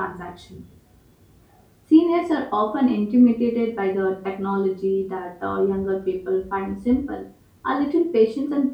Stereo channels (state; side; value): identical; both; correlation 1.00